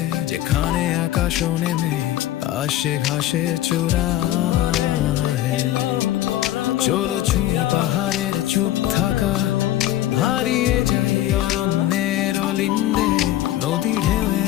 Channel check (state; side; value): quieter; right; 13.6 dB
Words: যেখানে আকাশ নেমে আসে ঘাসের চূড়ায়। চলো ছুঁই পাহাড়ের চুপ থাকা, হারিয়ে যাই অরণ্যের অলিন্দে। নদী